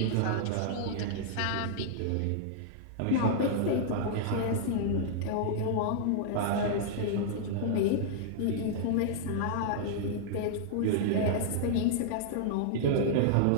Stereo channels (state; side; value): different; both; correlation -0.01